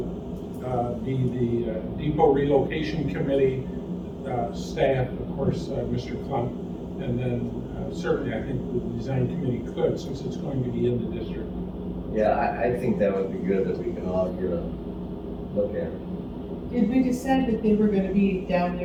be the depot relocation committee staff, of course, Mr. Klump, and then certainly I think the design committee could, since it's going to be in the district. Yeah, I think that would be good if we can all get a said that they were gonna be down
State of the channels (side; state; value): both; identical; correlation 1.00